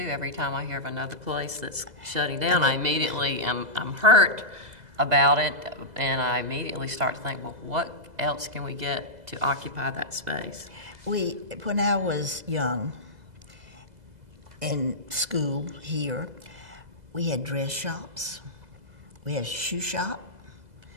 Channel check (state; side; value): late; left; 2.0 ms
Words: Every time I hear of another place that's shutting down, I immediately I'm hurt about it, and I immediately start to think, well, what else can we get to occupy that space? When I was young, in school here, we had dress shops, we had a shoe shop,